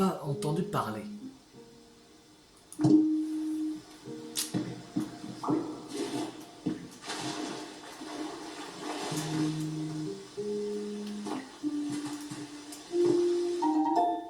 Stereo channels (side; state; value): both; identical; correlation 1.00